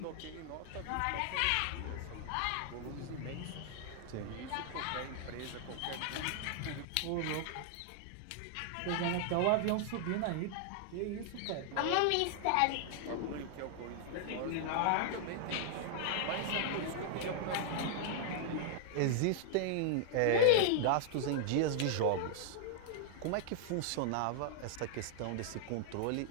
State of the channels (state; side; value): different; both; correlation 0.00